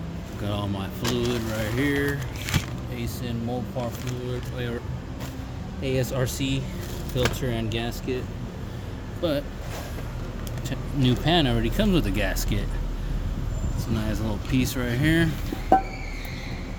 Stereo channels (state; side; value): identical; both; correlation 1.00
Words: Got all my fluid right here. ASIN Mopar fluid, or ASRC filter and gasket. But new pan already comes with a gasket. It's a nice little piece right here. Got